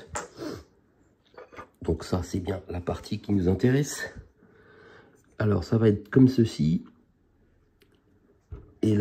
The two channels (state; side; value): identical; both; correlation 1.00